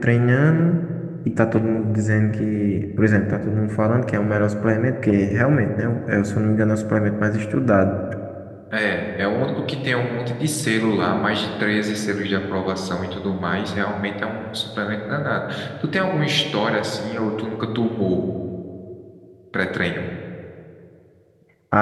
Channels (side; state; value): both; identical; correlation 1.00